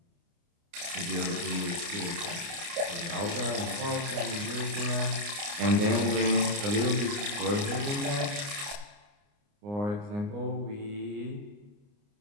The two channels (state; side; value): late; left; 29 ms